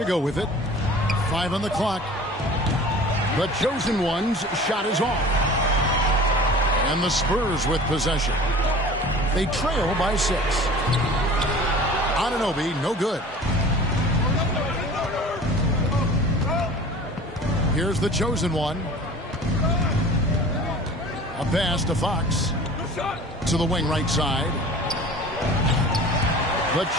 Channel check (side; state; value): both; normal; correlation 0.42